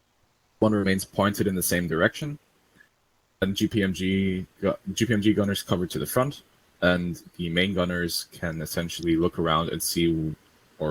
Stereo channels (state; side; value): identical; both; correlation 1.00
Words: One remains pointed in the same direction, and GPMG gunners cover to the front, and the main gunners can essentially look around and see,